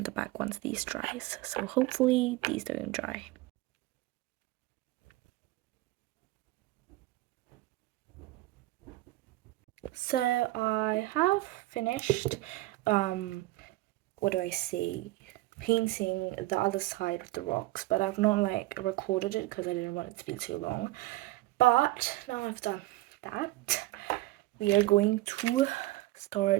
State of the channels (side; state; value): left; quieter; 18.4 dB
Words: the back once these dries. So hopefully these don't dry. So I have finished, what do I say, painting the other side of the rocks, but I've not like recorded it because I didn't want it to be too long. But now I've done that, we are going to